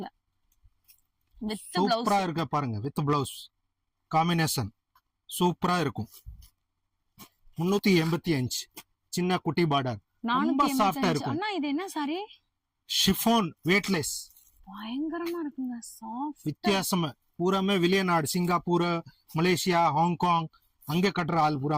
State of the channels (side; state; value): both; identical; correlation 1.00